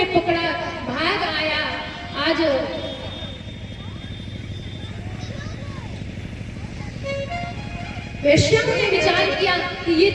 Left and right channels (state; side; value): identical; both; correlation 1.00